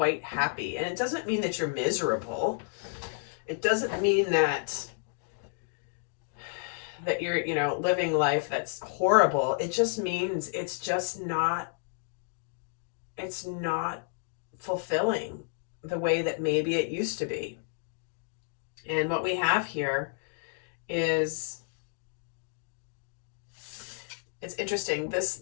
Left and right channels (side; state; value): right; silent; digital silence